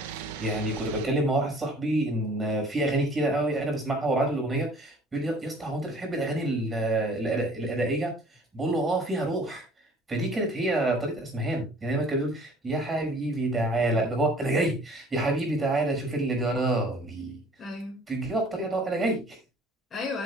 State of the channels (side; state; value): both; normal; correlation 0.52